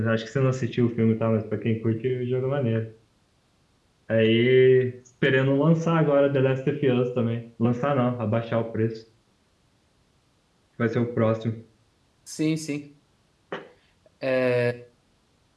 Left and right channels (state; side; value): identical; both; correlation 1.00